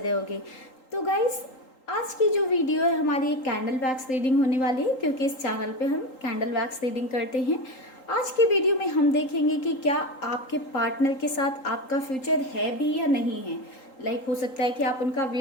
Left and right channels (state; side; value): late; right; 3.8 ms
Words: होगे। तो गाइस, आज की जो वीडियो है हमारी एक कैंडल वैक्स रीडिंग होने वाली है, क्योंकि इस चैनल पे हम कैंडल वैक्स रीडिंग करते हैं। आज की वीडियो में हम देखेंगे कि क्या आपके पार्टनर के साथ आपका फ्यूचर है भी या नहीं है। हो सकता है कि आप उनका